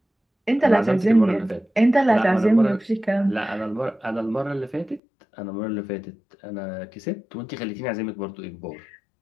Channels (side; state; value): right; drops out; at 5.0 s